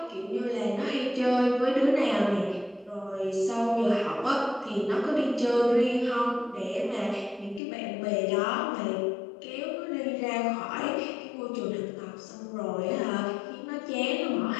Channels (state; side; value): drops out; right; at 7.6 s